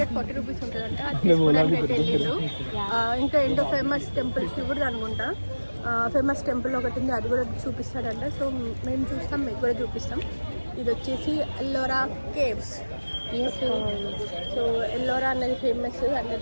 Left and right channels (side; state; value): both; inverted; correlation -1.00